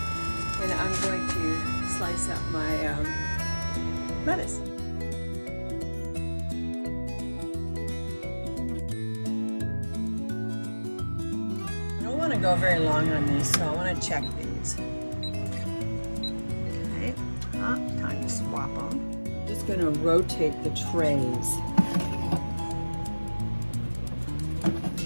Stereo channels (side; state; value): both; inverted; correlation -1.00